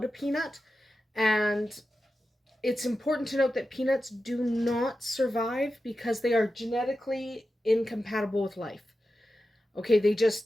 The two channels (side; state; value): both; normal; correlation 0.92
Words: a peanut. And it's important to note that peanuts do not survive because they are genetically incompatible with life. Okay, they